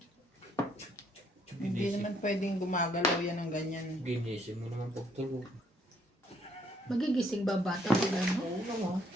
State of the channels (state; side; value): normal; both; correlation 0.68